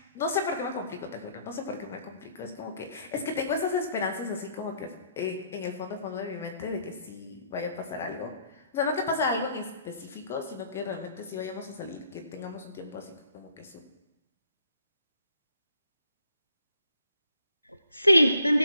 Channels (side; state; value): both; inverted; correlation -0.63